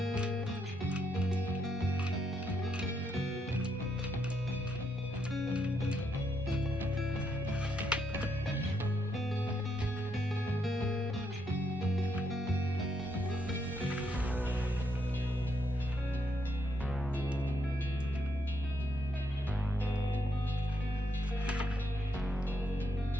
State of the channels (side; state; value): both; normal; correlation 0.77